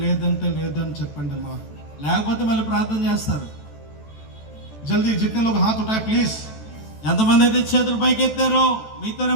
లేదంటే లేదని చెప్పండి అమ్మా। లేకపోతే మళ్ళీ ప్రార్థన చేస్తారు. जल्दी जितने लोग हाथ उठाए प्लीज। ఎంతమంది అయితే చేతులు పైకి ఎత్తారో మీతోనే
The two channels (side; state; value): right; late; 14 ms